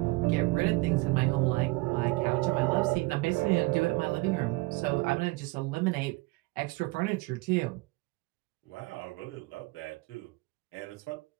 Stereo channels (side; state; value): left; quieter; 24.0 dB